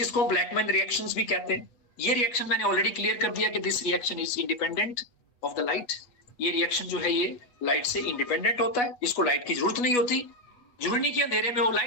ब्लैकमैन रिएक्शंस भी कहते हैं। ये रिएक्शन मैंने ऑलरेडी क्लियर कर दिया कि this reaction is independent of the light. ये रिएक्शन जो है ये लाइट से इंडिपेंडेंट होता है, इसको लाइट की जरूरत नहीं होती। जरूरी नहीं कि अंधेरे में हो,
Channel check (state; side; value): late; right; 8.2 ms